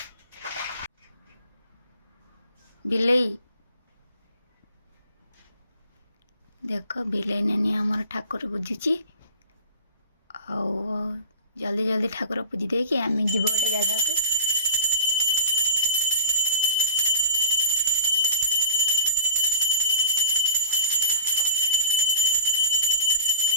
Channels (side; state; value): both; inverted; correlation -0.40